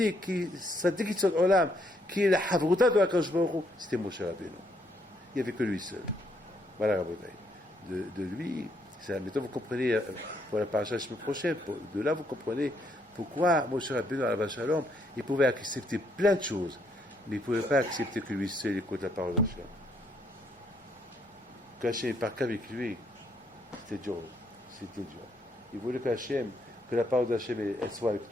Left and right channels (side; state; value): both; normal; correlation 0.72